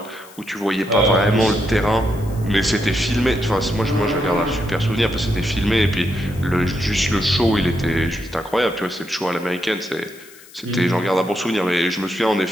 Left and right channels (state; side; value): noise; left; hiss, 22 dB below the sound